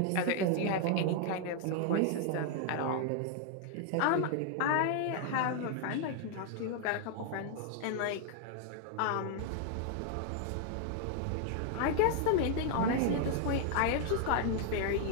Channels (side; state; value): both; different; correlation 0.00